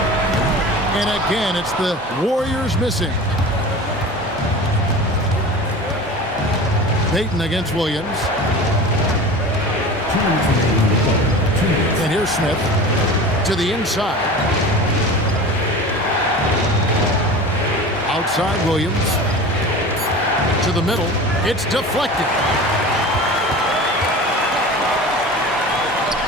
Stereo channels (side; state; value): both; normal; correlation 0.35